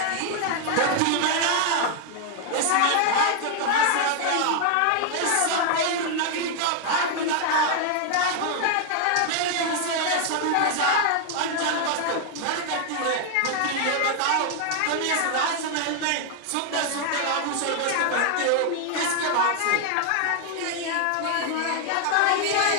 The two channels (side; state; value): both; different; correlation 0.00